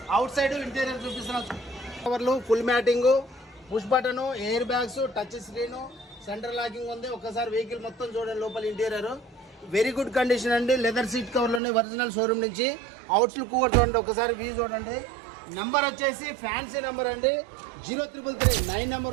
అవుట్ సైడ్ ఇంటీరియర్ చూపిస్తున్నాను. కవర్లు, full matting, push button, air bags, touch screen, centre locking ఉంది. ఒకసారి వెహికల్ మొత్తం చూడండి. లోపల ఇంటీరియర్ వెరీ గుడ్ కండిషన్ అండి. లెదర్ సీట్ కవర్లోనే ఒరిజినల్ షోరూమ్ నుంచి. అవుట్స్ లుక్ కూడా చూడండి, ఒకసారి వ్యూ చూడండి. నెంబర్ వచ్చేసి ఫ్యాన్సీ నెంబర్ అండి, 0333 9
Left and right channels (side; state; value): left; drops out; at 11.6 s